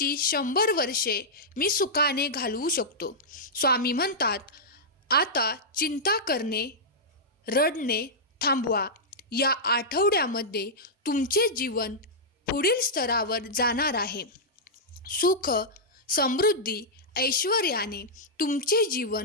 100 वर्षे मी सुखाने घालवू शकतो. स्वामी म्हणतात, आता चिंता करणे, रडणे थांबवा. या आठवड्यामध्ये तुमचे जीवन पुढील स्तरावर जाणार आहे. सुख, समृद्धी, ऐश्वर्याने तुमचे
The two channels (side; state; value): both; normal; correlation -0.10